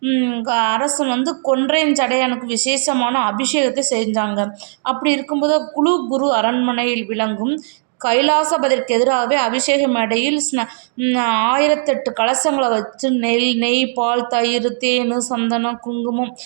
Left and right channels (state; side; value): silent; left; digital silence